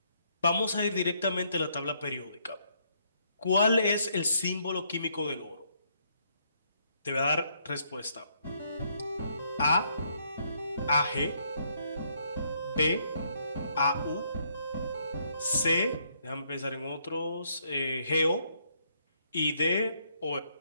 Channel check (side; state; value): both; inverted; correlation -0.71